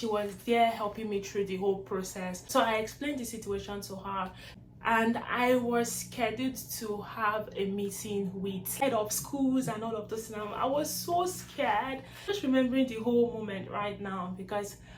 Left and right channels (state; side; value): identical; both; correlation 1.00